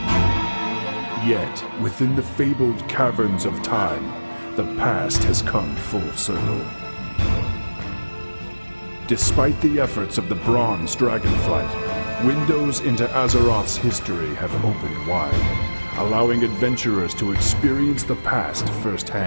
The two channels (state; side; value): inverted; both; correlation -1.00